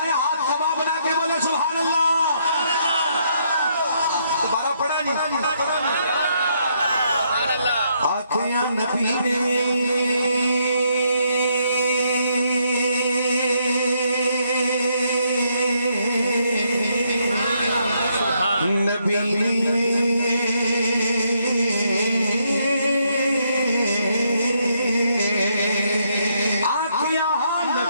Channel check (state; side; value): inverted; both; correlation -0.74